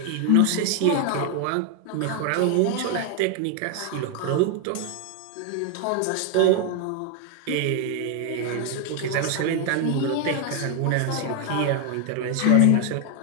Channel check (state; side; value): different; both; correlation 0.01